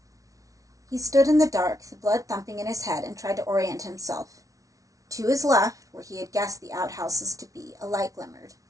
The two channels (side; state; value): left; late; 0.17 ms